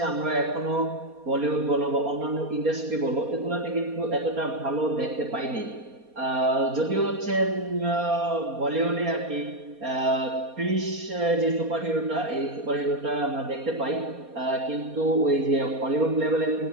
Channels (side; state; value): left; late; 4.2 ms